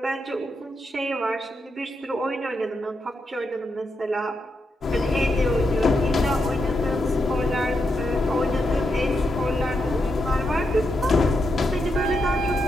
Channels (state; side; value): normal; both; correlation 0.83